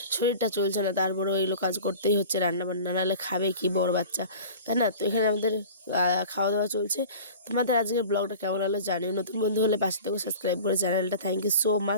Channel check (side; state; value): both; inverted; correlation -0.39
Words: শরীরটা চলছে না, তারপরেও এগুলো কাজ করতেই হচ্ছে, রান্না বান্না নাহলে খাবে কি বড় বাচ্চা, তাই না? তো এখানে আমাদের খাওয়া দাওয়া চলছে। তোমাদের আজকের ব্লগটা কেমন হলো জানিও। নতুন বন্ধু হলে পাশে থেকে সাবস্ক্রাইব করে চ্যানেলটা। Thank you so